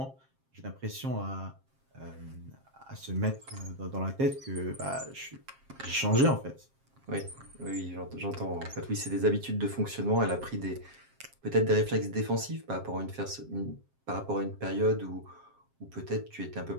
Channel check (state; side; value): late; left; 7.5 ms